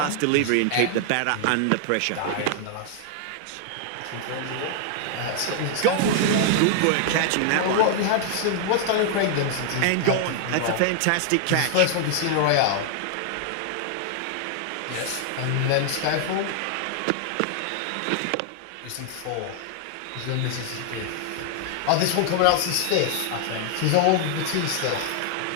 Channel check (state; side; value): different; both; correlation 0.00